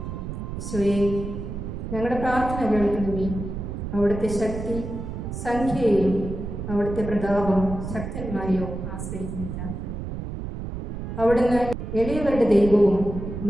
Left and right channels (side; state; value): right; noise; rumble, 6 dB below the sound